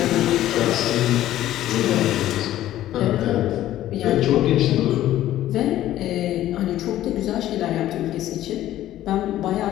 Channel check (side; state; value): right; quieter; 13.5 dB